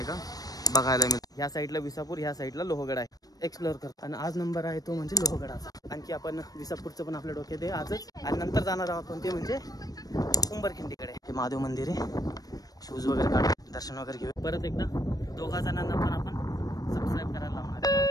का बघायला मिळतो। ह्या साईडला विसापूर, ह्या साईडला लोहगड आहे। एक्सप्लोर कर आणि आज नंबर आहे तो म्हणजे लोहगडाचा। आणखी आपण विसापूरचं पण आपल्या डोक्यात आहे आजच, आणि नंतर जाणार आहोत कोणते म्हणजे उंबरखिंडीकडे। हे महादेव मंदिर आहे, शूज वगैरे काढून दर्शन वगैरे घेऊ। परत एकदा दोघा जणांना पण आपण सबस्क्राईब करायला लावणार आहे।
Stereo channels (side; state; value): right; late; 0.18 ms